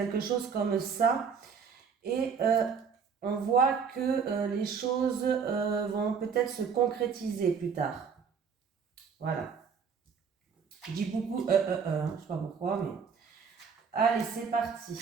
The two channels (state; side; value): quieter; left; 6.2 dB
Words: chose comme ça. Et on voit que les choses vont peut-être se concrétiser plus tard. Voilà. Je dis beaucoup je sais pas pourquoi, mais... Allez, c'est parti.